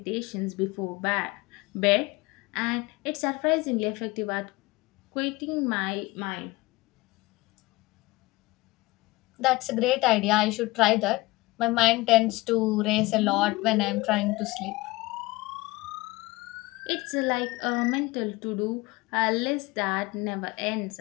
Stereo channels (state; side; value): quieter; right; 21.9 dB